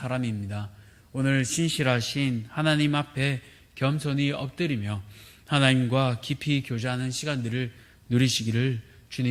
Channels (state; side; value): identical; both; correlation 1.00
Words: 오늘 신실하신 하나님 앞에 겸손히 엎드리며 하나님과 깊이 교제하는 시간들을 누리시기를